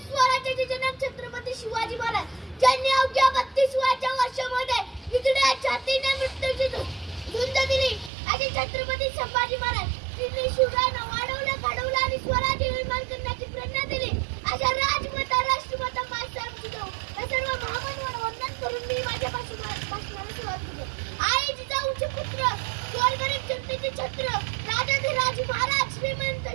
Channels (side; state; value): left; drops out; at 8.1 s